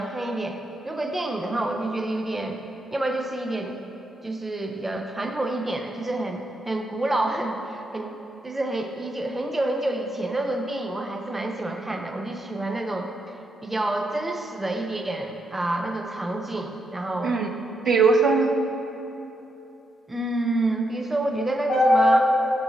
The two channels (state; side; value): normal; both; correlation 0.81